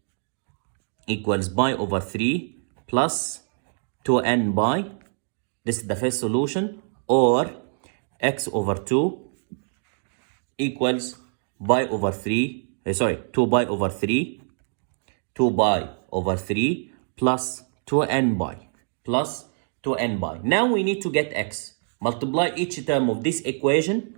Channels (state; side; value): silent; left; digital silence